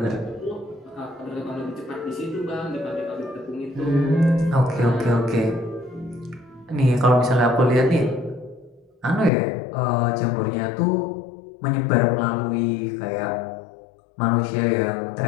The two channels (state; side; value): drops out; right; at 9.3 s